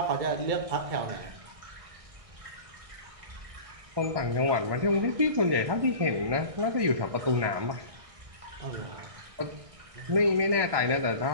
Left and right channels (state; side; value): late; left; 1.6 ms